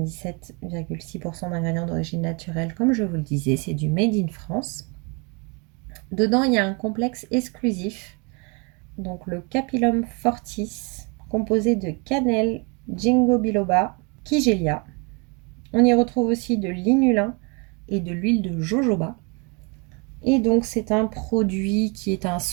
d'ingrédients d'origine naturelle, comme je vous le disais, c'est du Made in France. Dedans, il y a un complexe exclusif, donc le Capillum Fortis, composé de cannelle, ginkgo biloba, kigelia. On y retrouve aussi de l'inulin et de l'huile de jojoba. Et donc, c'est un produit qui est un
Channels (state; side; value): quieter; left; 32.0 dB